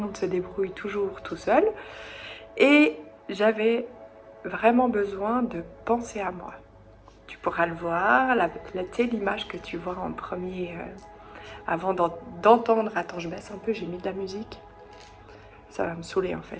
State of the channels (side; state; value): both; identical; correlation 1.00